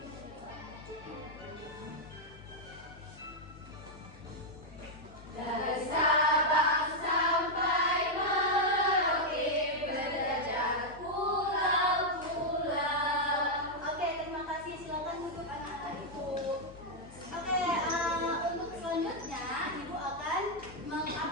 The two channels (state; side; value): noise; left; hum, 19 dB below the sound